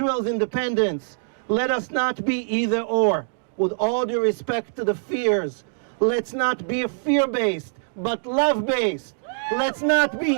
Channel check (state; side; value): silent; left; digital silence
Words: independence, let us not be either or. With all due respect to the fears, let's not be fear-based, but love-based. Let's not be